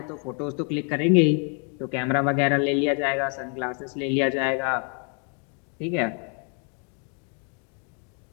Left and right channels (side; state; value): right; quieter; 39.2 dB